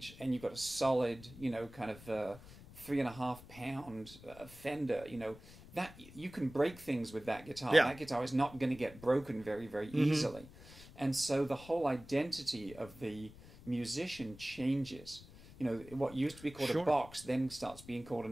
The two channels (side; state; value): left; noise; rumble, 19 dB below the sound